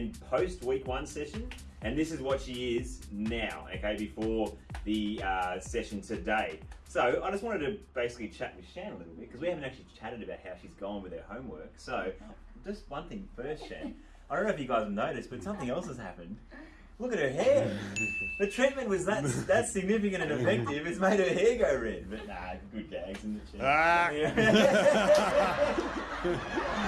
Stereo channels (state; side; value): identical; both; correlation 1.00